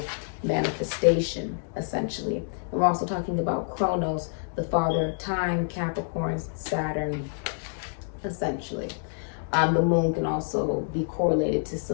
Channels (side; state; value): right; silent; digital silence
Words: manifestation, essentially. And we're also talking about Chronos, the father of time, Capricorn, Saturn, essentially. The moon can also be correlated to